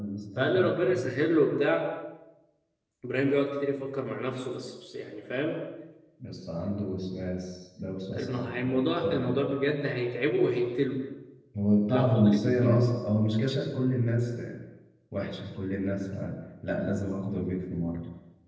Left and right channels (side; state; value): both; identical; correlation 1.00